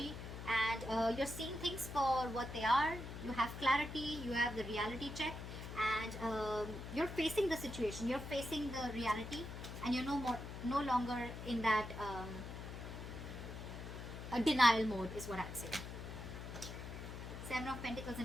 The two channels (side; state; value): left; noise; hum, 9 dB below the sound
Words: and you're seeing things for what they are. You have clarity, you have the reality check, and you're facing the situation. You're facing the reality, and you're no longer in that denial mode is what I'd say. Seven of Pentacles